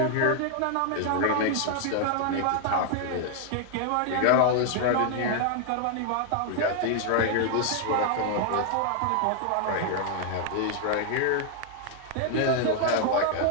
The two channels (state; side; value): different; both; correlation 0.00